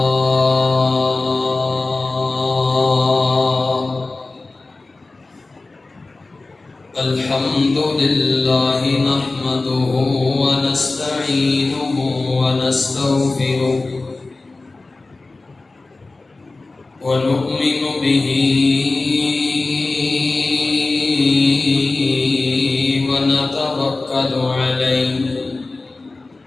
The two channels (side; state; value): right; quieter; 3.4 dB